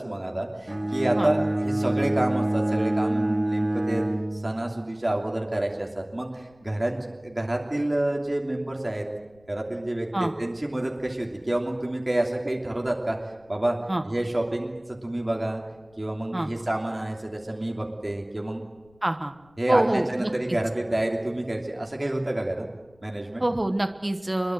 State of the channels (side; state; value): left; noise; rumble, 30 dB below the sound